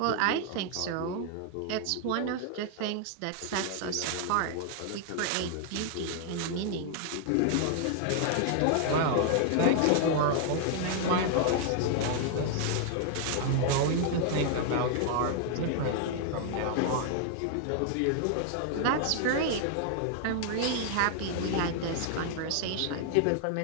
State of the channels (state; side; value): different; both; correlation 0.00